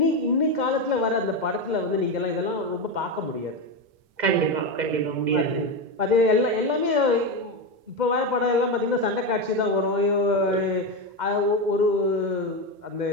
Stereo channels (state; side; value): late; left; 2.1 ms